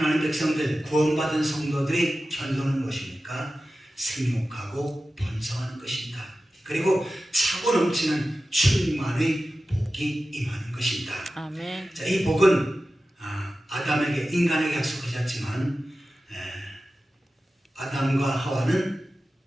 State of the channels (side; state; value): both; normal; correlation 0.94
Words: 백성들, 구원받은 성도들이 견도는 무엇입니까? 생육하고 번성하는 것입니다. 그리고 차고 넘치는 충만의 복이 임하는 것입니다. 아멘. 자, 이 복은 아담에게, 인간에게 약속하셨지만 아담과 하와는